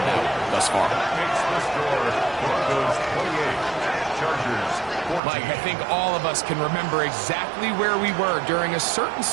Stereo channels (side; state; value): left; drops out; at 5.2 s